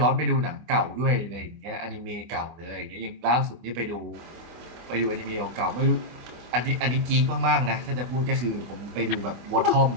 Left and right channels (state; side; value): late; left; 24 ms